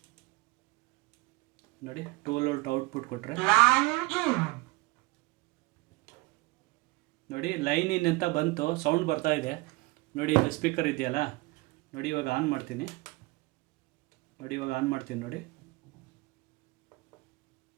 ನೋಡಿ 12 ವೋಲ್ಟ್ ಔಟ್ಪುಟ್ ಕೊಟ್ಟರೆ ನೋಡಿ ಲೈನ್ ಇನ್ ಅಂತ ಬಂತು, ಸೌಂಡ್ ಬರ್ತಾ ಇದೆ. ನೋಡಿ ಇದು ಸ್ಪೀಕರ್ ಇದೆಯಲ್ಲ, ನೋಡಿ ಇವಾಗ ಆನ್ ಮಾಡ್ತೀನಿ. ನೋಡಿ ಇವಾಗ ಆನ್ ಮಾಡ್ತೀನಿ. ನೋಡಿ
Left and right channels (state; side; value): quieter; left; 23.1 dB